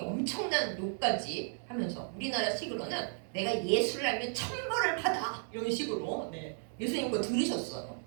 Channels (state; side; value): silent; left; 55 dB below the other